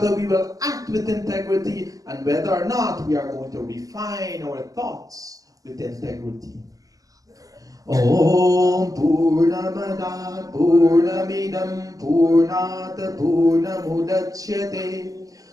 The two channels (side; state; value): left; late; 0.17 ms